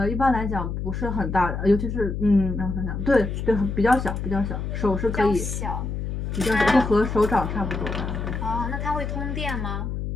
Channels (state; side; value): noise; left; hum, 4 dB below the sound